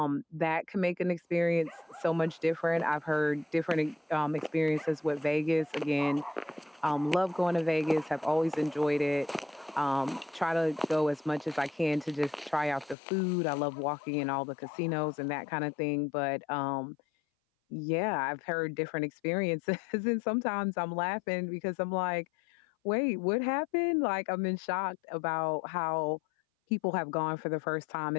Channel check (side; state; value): right; drops out; at 13.0 s